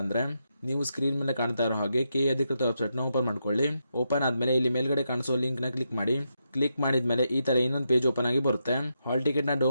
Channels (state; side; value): inverted; both; correlation -0.83